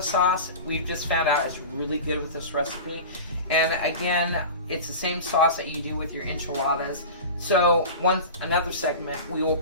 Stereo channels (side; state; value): both; inverted; correlation -0.31